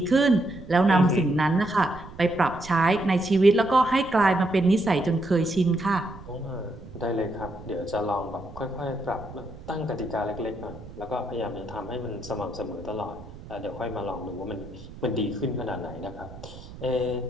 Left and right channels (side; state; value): right; noise; rumble, 16 dB below the sound